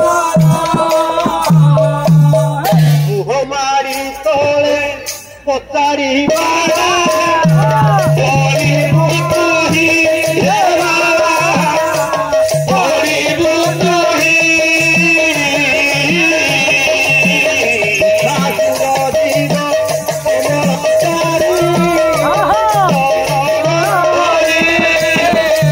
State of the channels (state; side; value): identical; both; correlation 1.00